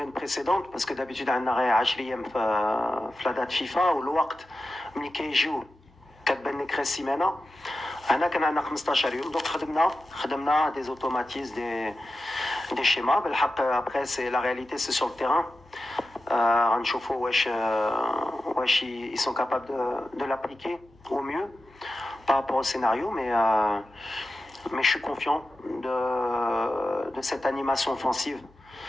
précédentes, parce que d'habitude عندنا غير 10 أيام في la date FIFA والوقت ملي كيجيو كتبان لك غير السيمانة. هنا كان عندنا 15 يوم. دونك خدمنا des automatismes, des schémas. بالحق après c'est la réalité, c'est sur le terrain. غنشوفوا واش ils sont capables de l'appliquer au mieux par rapport au scénario, mais je suis confiant de cette animation offensive.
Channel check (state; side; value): normal; both; correlation 0.92